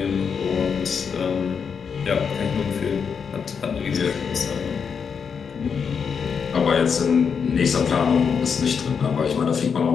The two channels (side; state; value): right; quieter; 6.4 dB